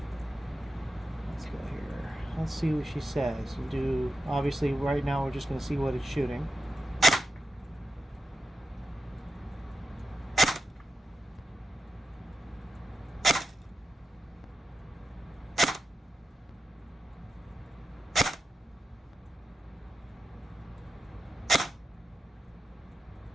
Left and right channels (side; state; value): both; normal; correlation 0.89